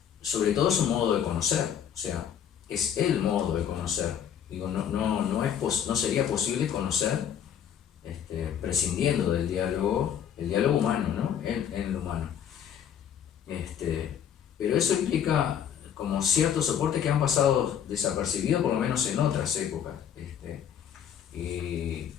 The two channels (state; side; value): quieter; right; 9.0 dB